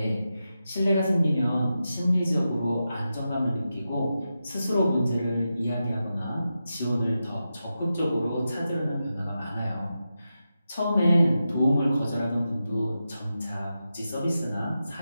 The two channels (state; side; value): inverted; both; correlation -0.90